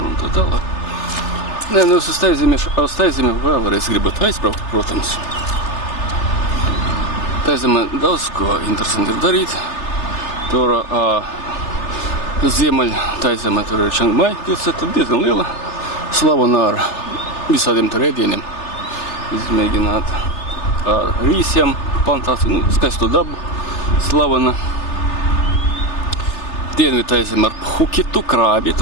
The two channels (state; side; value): late; right; 3.3 ms